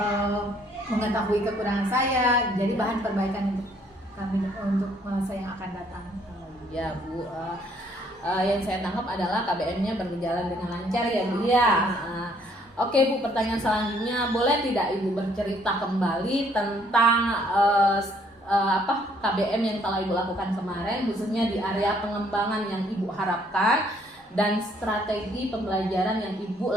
mengetahui kekurangan saya, jadi bahan perbaikan untuk kami untuk masa yang akan datang. Ya Bu, yang saya tangkap adalah KBM-nya berjalan dengan lancar ya Bu ya. Oke Bu, pertanyaan selanjutnya, boleh tidak Ibu bercerita kembali tentang KBM yang telah Ibu lakukan kemarin, khususnya di area pengembangan yang Ibu harapkan dan strategi pembelajaran yang Ibu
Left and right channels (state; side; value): normal; both; correlation 0.65